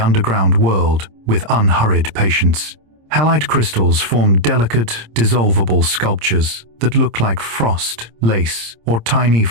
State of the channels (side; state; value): left; late; 26 ms